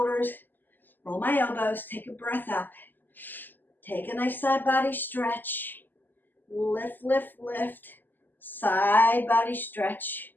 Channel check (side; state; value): right; late; 0.089 ms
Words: roll my elbows, take a breath up. Take a nice side body stretch. Lift, lift, lift. Side body stretch.